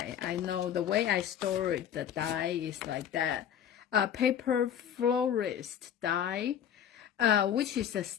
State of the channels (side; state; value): right; quieter; 9.4 dB